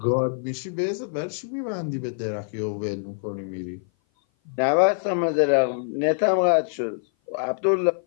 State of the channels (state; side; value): silent; right; 56 dB below the other